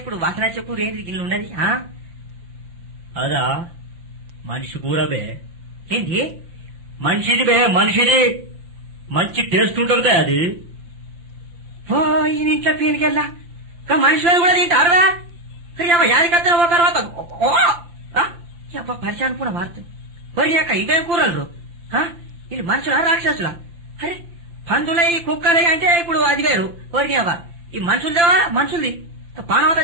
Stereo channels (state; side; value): late; left; 5.8 ms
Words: ఇప్పుడు వాసన వచ్చే కూర ఏంటి గిన్నె ఉన్నది? అదా మనిషి కూర బే. ఏంటి మనిషిది బే, మనిషిది. మంచి టేస్ట్ ఉంటుంది అది. ఓ ఈ ఇంట్లో పీనికెళ్ళా మనుషులను కూడా తింటారా? యాదికత్తా ఒక తర్వాత పరిచయం కూడా మారుతుంది. ఒరి అక్క ఇవేం కూరలు? వీళ్ళు మనుషులా రాక్షసులా? అరే పందులై కుక్కలై అంటే ఇప్పుడు అది వేరు. ఒరి అవ్వ ఈ మనుషులదేవా? మనుషులది పానవత